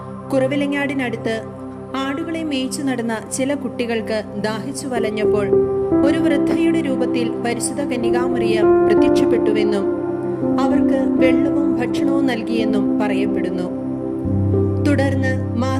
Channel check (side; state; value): both; identical; correlation 1.00